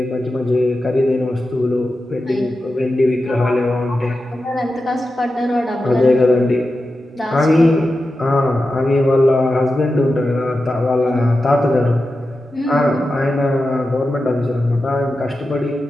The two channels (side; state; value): both; normal; correlation 0.91